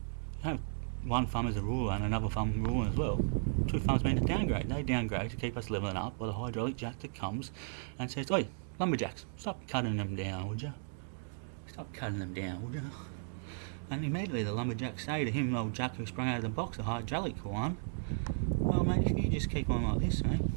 You know, one thumb is a ruler and another thumb ruling as well. 2 thumbs mean a downgrade. They downgrade to keep us levelling up by the hydraulic jack that comes and says, "Oi, lumberjacks, stop cutting them down, would you? Stop cutting them down, would you?" And immediately the lumberjacks say to him, old Jack who sprung out of the box, a hydraulic one, "Well mate, if you just keep on like this, mate,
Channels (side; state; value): left; silent; digital silence